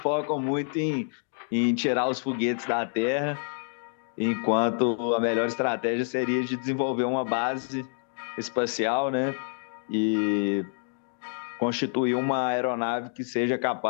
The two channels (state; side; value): silent; right; digital silence